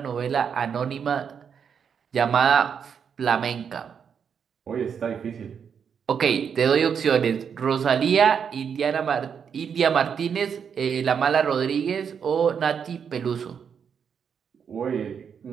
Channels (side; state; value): left; quieter; 7.1 dB